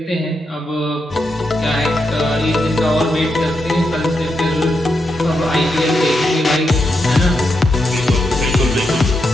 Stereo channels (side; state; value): both; normal; correlation 0.84